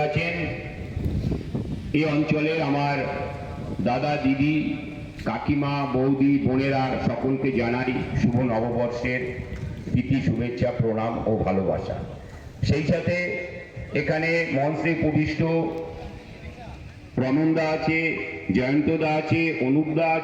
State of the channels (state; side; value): identical; both; correlation 1.00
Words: আছেন, এই অঞ্চলের আমার দাদা, দিদি, কাকিমা, বৌদি, বোনেরা সকলকে জানাই শুভ নববর্ষের প্রীতি, শুভেচ্ছা, প্রণাম ও ভালোবাসা। সেই সাথে এখানে মঞ্চে উপবিষ্ট রমনদা আছে, জয়ন্তদা আছে, অনুপদা